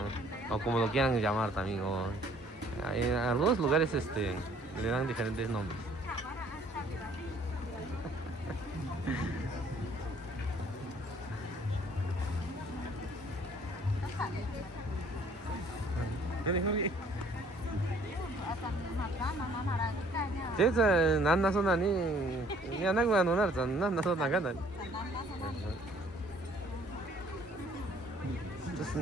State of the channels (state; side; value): normal; both; correlation 0.59